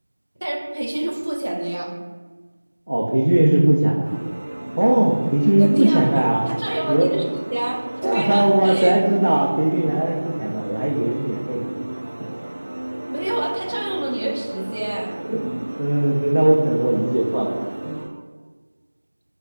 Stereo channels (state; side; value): inverted; both; correlation -1.00